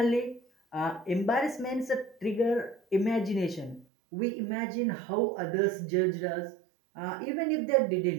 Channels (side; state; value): left; drops out; at 3.9 s